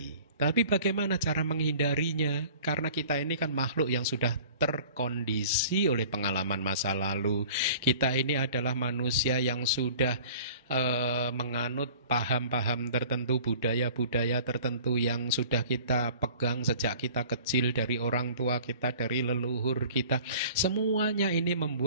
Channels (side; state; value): both; inverted; correlation -0.46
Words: Tapi bagaimana cara menghindarinya? Karena kita ini kan makhluk yang sudah terkondisi oleh pengalaman masa lalu. Kita ini adalah manusia yang sudah menganut paham-paham tertentu, budaya-budaya tertentu yang sudah kita pegang sejak kita kecil, dari orang tua kita, dari leluhur kita. Semuanya ini